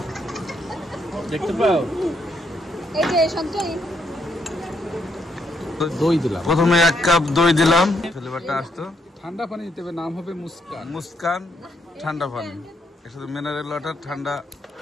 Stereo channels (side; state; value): both; normal; correlation 0.76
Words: দেখতে পাও এই যে সঞ্চয় দই দিলাম। প্রথমে এক কাপ দই দিলাম, ফ্লেভারটা আসতো। ঠান্ডা পানি দিতে হবে, নাম হবে মুস্কান। মুস্কান ঠান্ডা পানি, এর সাথে মিনারেল ওয়াটার ঠান্ডা।